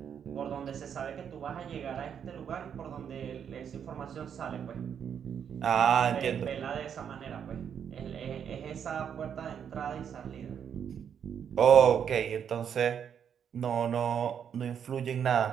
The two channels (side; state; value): left; quieter; 8.1 dB